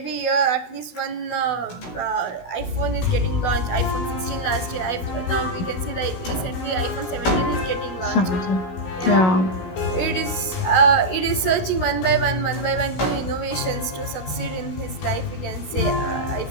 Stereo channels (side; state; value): right; late; 16 ms